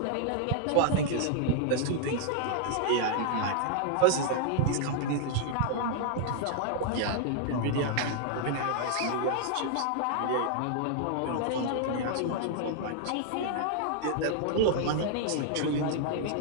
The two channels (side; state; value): both; different; correlation -0.01